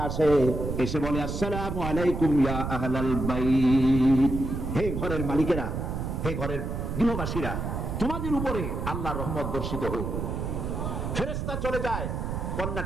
আসে, এসে বলে, আসসালামু আলাইকুম ইয়া আহলাল বাইত, হে ঘরের মালিকেরা, হে ঘরের গৃহবাসীরা, তোমাদের উপরে আল্লাহর রহমত বর্ষিত হোক। ফেরেশতা চলে যায়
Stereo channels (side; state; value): right; noise; rumble, 3 dB below the sound